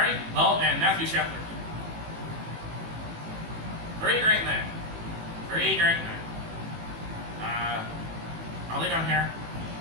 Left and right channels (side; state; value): left; late; 18 ms